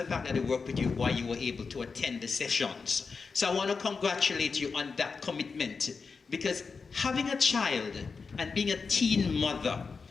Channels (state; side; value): quieter; right; 4.9 dB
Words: fact that they worked with you why you were able to attend the sessions. So I want to congratulate you on that commitment, because having a child and being a teen mother,